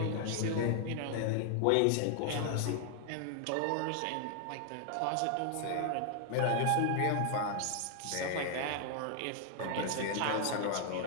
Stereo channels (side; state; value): both; different; correlation 0.00